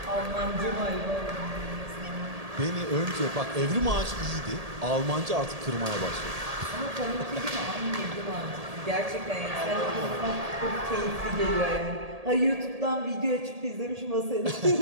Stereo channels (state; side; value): late; left; 1.8 ms